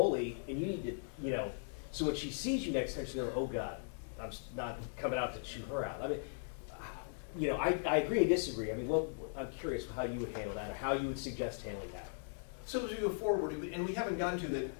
and you need to, so when she sees you next time, she's going, oh God, I'm not coming out to chew her out. I mean, I agree and disagree. I mean, I'm curious how you would handle that, or how you would suggest handling that. So as we go forward, and we haven't gotten to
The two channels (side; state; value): right; silent; digital silence